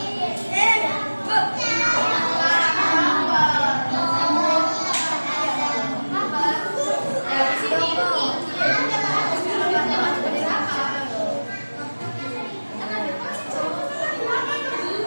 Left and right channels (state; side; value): inverted; both; correlation -1.00